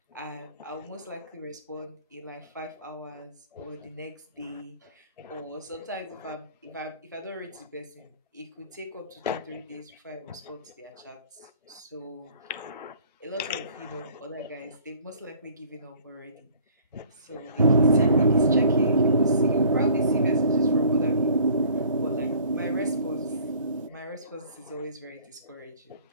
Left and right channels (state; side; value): inverted; both; correlation -0.52